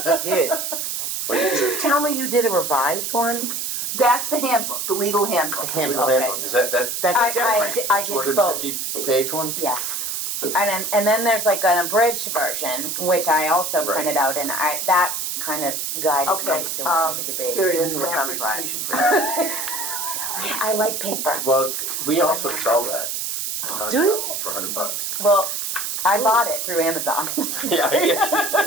did. Did you tell me you did a revised one? That's the handbook, the legal handbook. Okay. Is that That's different. I did both. 250-page one? Yes. And then there's like an abridged version, which I also Right. printed out, and that kind of guided Okay, me to what I needed to be. here it is, You need a grant thumb drive. presentation. I like paper. Well, we also sell that. Do you? For $100. Well, I bought it through Amazon. Yeah, I guess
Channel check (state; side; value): noise; right; hiss, 3 dB below the sound